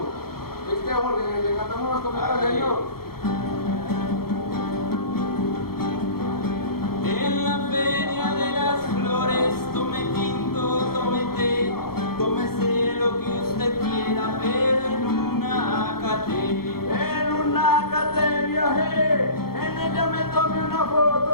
Jorge, le cantamos unos copitos, señor. En la feria de las flores, tome tinto, tome té, tómese lo que usted quiera, pero en una academia. En una academia, en ella me tomé una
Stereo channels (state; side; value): late; right; 0.94 ms